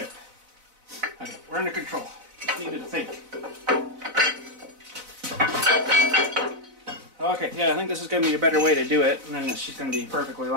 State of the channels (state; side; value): late; left; 4.0 ms